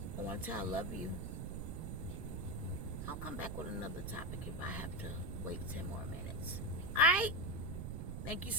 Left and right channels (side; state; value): right; noise; rumble, 4 dB below the sound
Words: want to tell I love you. I'll come back with another topic if I have to wait 10 more minutes. All right? Thank you